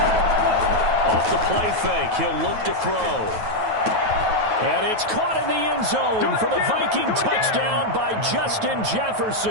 Off the play fake, he'll look to throw. And it's caught in the end zone for the Viking touchdown by Justin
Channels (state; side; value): late; left; 9.3 ms